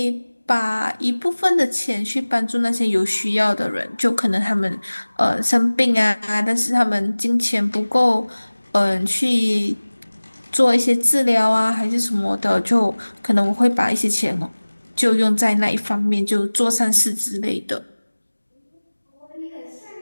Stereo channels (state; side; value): inverted; both; correlation -1.00